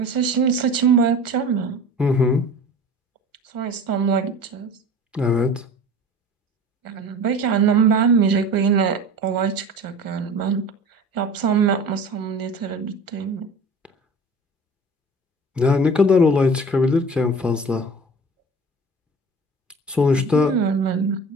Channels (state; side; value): normal; both; correlation 0.39